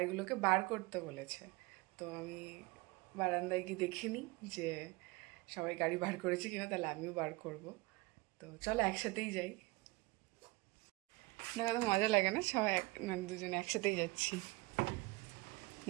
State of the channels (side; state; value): left; quieter; 23.4 dB